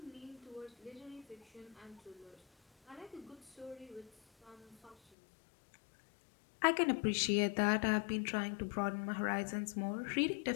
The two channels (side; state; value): right; drops out; at 5.0 s